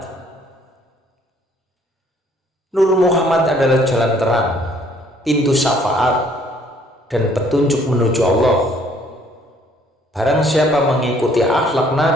Nur Muhammad adalah jalan terang, pintu syafaat, dan petunjuk menuju Allah. Barang siapa mengikuti akhlak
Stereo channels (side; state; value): both; normal; correlation 0.62